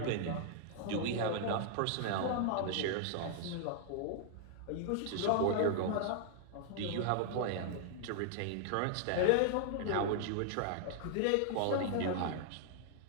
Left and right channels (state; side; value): different; both; correlation 0.00